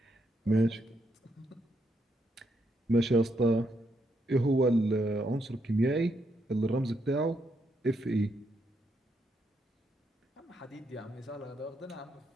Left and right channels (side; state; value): both; normal; correlation 0.78